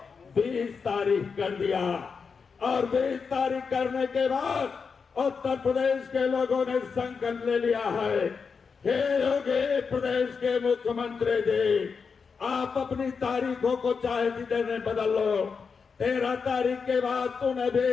20 तारीख कर दिया। और 20 तारीख करने के बाद उत्तर प्रदेश के लोगों ने संकल्प ले लिया है, हे योगी प्रदेश के मुख्यमंत्री जी, आप अपनी तारीखों को चाहे जितने बदल लो, 13 तारीख के बाद तूने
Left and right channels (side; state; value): right; quieter; 5.5 dB